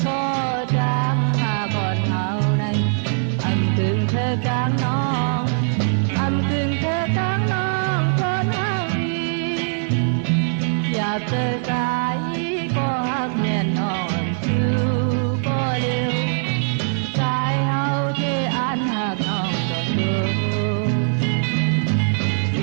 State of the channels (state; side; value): silent; left; digital silence